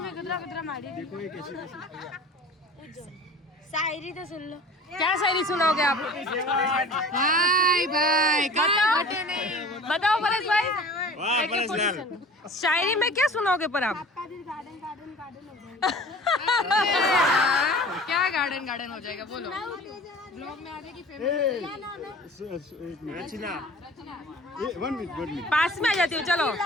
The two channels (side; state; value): both; normal; correlation 0.42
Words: ગદરા ગદરા મારી देखो ये कैसे कैसे शायरी तो सुन लो. क्या शायरी सुनाओगे आप? भाई भाई बताओ बताओ परेश भाई. शायरी में क्या सुनाओगे पर आप? क्या गार्डन गार्डन हो जाएगा बोलो. ब्लॉग में आ जाएगी रचना ये 1 मिनट पास में आ जाती हूँ चलो.